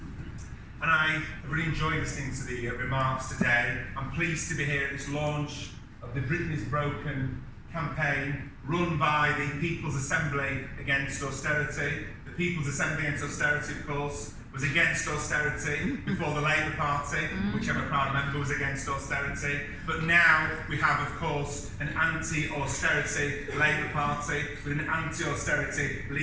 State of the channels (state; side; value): identical; both; correlation 1.00